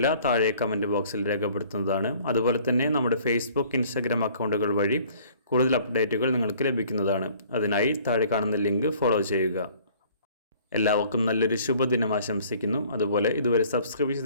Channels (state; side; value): inverted; both; correlation -0.54